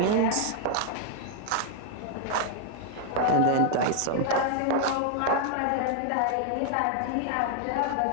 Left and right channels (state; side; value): different; both; correlation 0.00